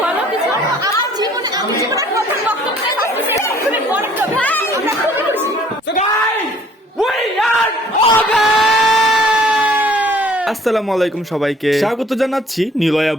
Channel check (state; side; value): normal; both; correlation 0.56